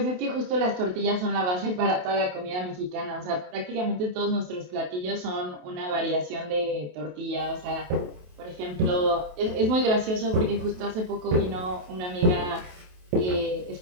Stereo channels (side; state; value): left; late; 27 ms